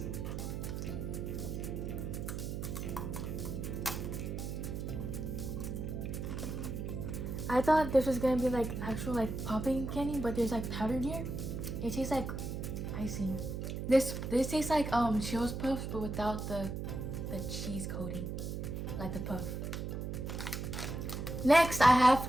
I thought this was gonna be like actual like popping candy, but there's like powder in here. It tastes like icing. This tastes like Cheetos Puffs, but without the cheese coating, like the puff. Next, I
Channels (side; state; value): right; noise; hum, 4 dB below the sound